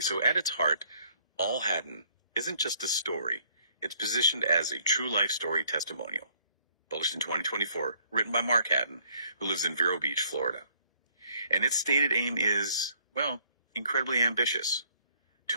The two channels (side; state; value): both; inverted; correlation -0.64